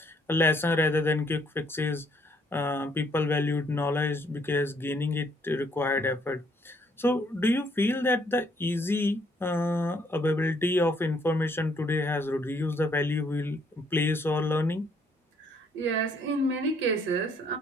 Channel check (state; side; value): normal; both; correlation 0.67